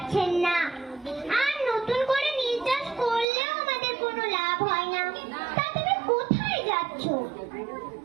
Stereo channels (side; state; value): left; drops out; at 3.2 s